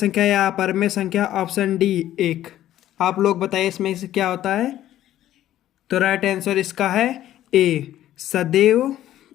या अपरिमेय संख्या, ऑप्शन डी एक। आप लोग बताइए इसमें से क्या होता है। तो राइट आंसर इसका है ए, सदैव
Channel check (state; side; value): quieter; right; 12.9 dB